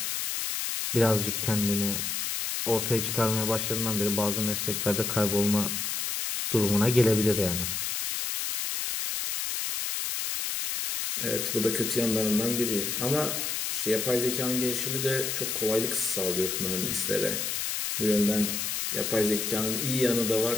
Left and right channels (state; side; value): noise; left; hiss, 1 dB below the sound